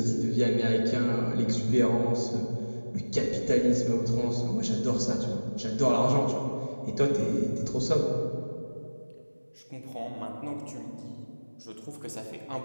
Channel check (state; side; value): inverted; both; correlation -1.00